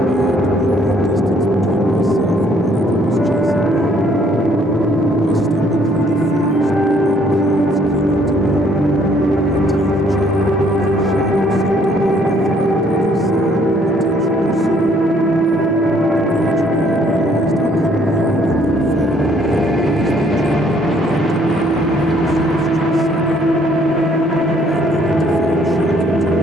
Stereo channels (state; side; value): normal; both; correlation 0.64